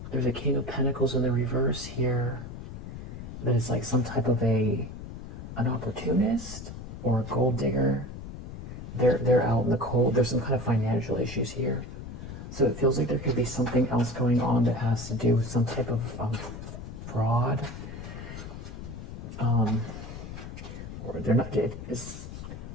There's a King of Pentacles in the reverse here. That is like some type of an opportunist, or a gold digger. They're out in the cold. There's some kind of financial issues here. So it feels like there could be something else going on that has to do with some type of fraud. Or they're not, as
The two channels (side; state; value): left; noise; rumble, 10 dB below the sound